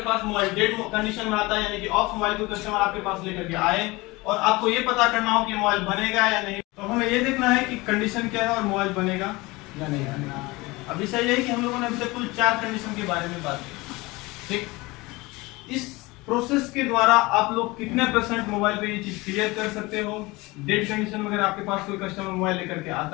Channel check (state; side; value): quieter; right; 22.6 dB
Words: पास मोबाइल डेड कंडीशन में आता है, यानी कि ऑफ मोबाइल को कस्टमर आपके पास लेकर के आए और आपको ये पता करना हो कि मोबाइल बनेगा या नहीं, तो हमें ये देखना है कि कंडीशन क्या है और मोबाइल बनेगा या नहीं बनेगा। अब विषय यही कि हम लोगों ने अभी तक कुल 4 कंडीशन के बारे में बात की, ठीक। इस प्रोसेस के द्वारा आप लोग कितने % मोबाइल पे ये चीज क्लियर कर सकते हो? डेड कंडीशन में अगर आपके पास कोई कस्टमर मोबाइल लेकर के